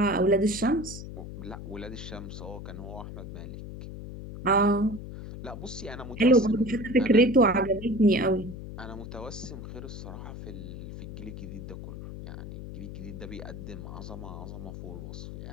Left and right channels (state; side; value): noise; left; hum, 10 dB below the sound